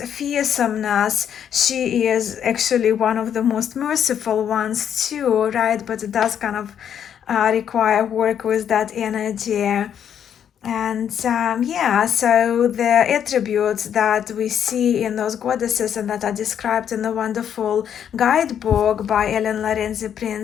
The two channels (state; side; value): quieter; right; 8.9 dB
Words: she is actually one of the most merciful ones too, right? But it does kind of require work with that energy. And yeah, so the attributes that we see in those goddesses and that are described in the wonderful guidebook by Ellen Lorenzi